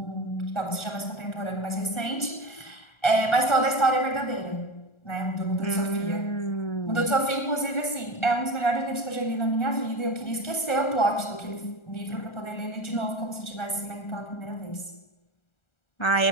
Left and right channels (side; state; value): right; late; 1.3 ms